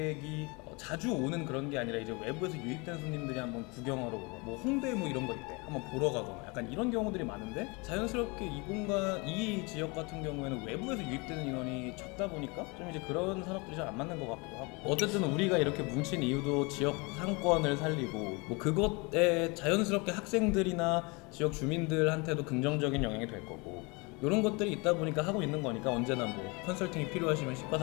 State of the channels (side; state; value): right; quieter; 28.5 dB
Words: 자주 오는 그런 게 아니라 이제 외부에서 유입된 손님들이 한번 구경하러 오고 뭐 홍대 뭐 이런 거 있대 한번 보러 가거나 약간 이런 경우들이 많은데 자연스럽게 이 공간 이 지역 같은 경우에는 외부에서 유입되는 인원이 적다 보니까 좀 이제 그런 산업들이 잘 안 맞는 것 같기도 하고 어쨌든 우리가 이렇게 뭉친 이유도 지역 상권을 살리고 뭐 그것에 자연스럽게 학생들이나 지역 주민들한테도 긍정적인 영향이 될 거고 이런 것들이 있다 보니까 하고 있는 거니까 언제나 뭐 컨설팅이 필요하시면